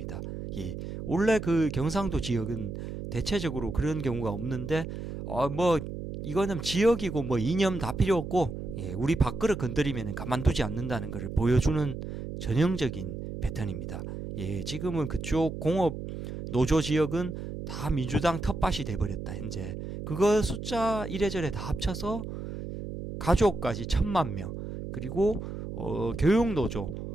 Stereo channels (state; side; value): noise; right; hum, 7 dB below the sound